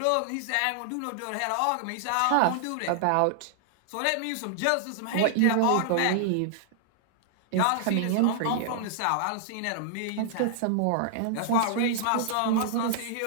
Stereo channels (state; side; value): different; both; correlation -0.01